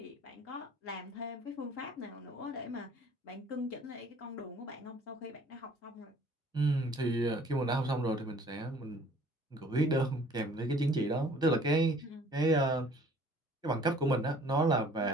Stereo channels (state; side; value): normal; both; correlation 0.54